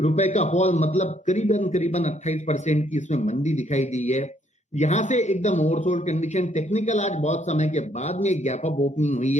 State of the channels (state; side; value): normal; both; correlation 0.68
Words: का फॉल, मतलब करीबन 28% की इसमें मंदी दिखाई दी है। यहां से एकदम ओवरसोल्ड कंडीशन, टेक्निकल आज बहुत समय के बाद में गैप अप ओपनिंग हुई